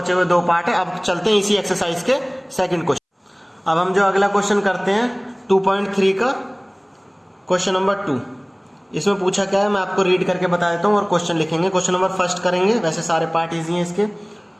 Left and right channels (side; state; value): both; identical; correlation 1.00